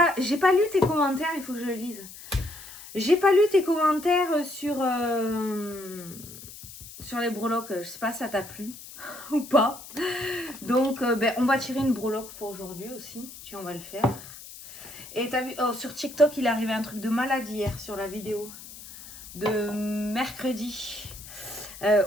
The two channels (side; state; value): left; noise; hiss, 15 dB below the sound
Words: lu tes commentaires, il faut que je le lise. J'ai pas lu tes commentaires sur les breloques. Je sais pas si ça t'a plu ou pas. Donc, on va tirer une breloque pour aujourd'hui aussi. Tiens, on va le faire. Et t'as vu, sur TikTok, il est arrivé un truc de malade hier sur la vidéo de mercredi